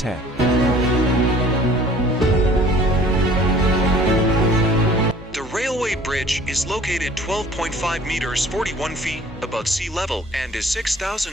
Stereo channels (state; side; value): normal; both; correlation 0.51